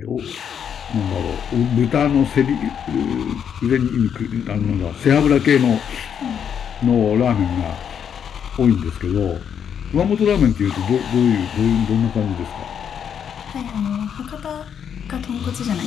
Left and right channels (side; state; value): right; quieter; 8.1 dB